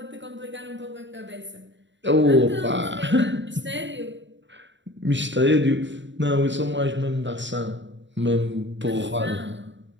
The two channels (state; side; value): late; left; 0.54 ms